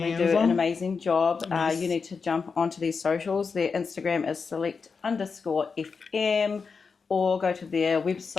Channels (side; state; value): right; quieter; 5.2 dB